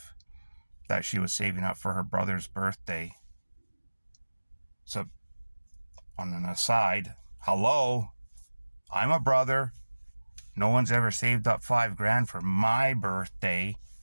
that she was saving up for her brother's birthday. So on an aside, hello, I'm a brother. No one's ever saved up $5,000 for my birthday.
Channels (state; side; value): inverted; both; correlation -1.00